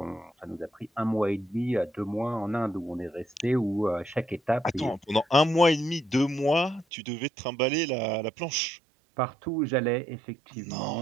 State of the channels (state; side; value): drops out; left; at 6.9 s